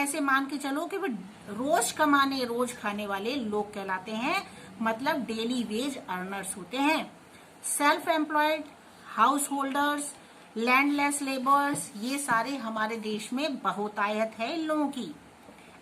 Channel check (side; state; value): both; identical; correlation 1.00